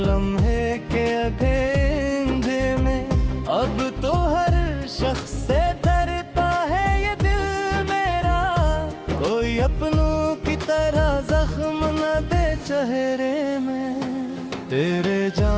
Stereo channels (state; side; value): identical; both; correlation 1.00